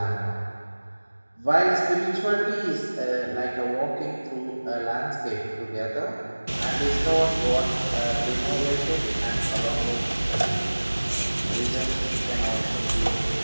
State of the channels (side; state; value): both; inverted; correlation -1.00